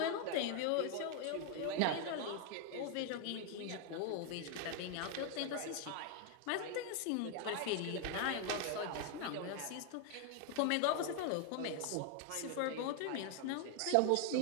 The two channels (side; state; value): both; different; correlation 0.01